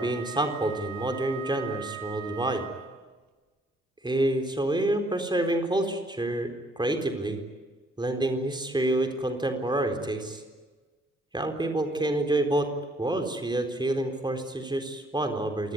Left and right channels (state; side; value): normal; both; correlation 0.64